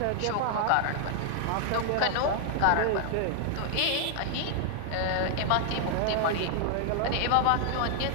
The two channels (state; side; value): different; both; correlation 0.00